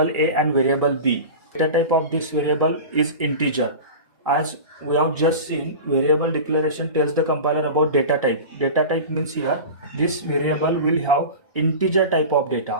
a and variable b. Data type of this variable is integer. As we have just seen, variable declaration tells the compiler about data type. Data type means here this variable will have integer type of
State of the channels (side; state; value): both; inverted; correlation -0.32